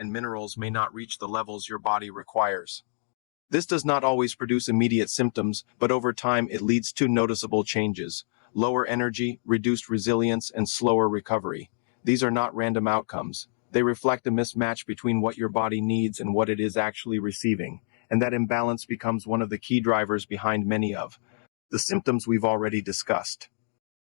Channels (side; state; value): right; silent; digital silence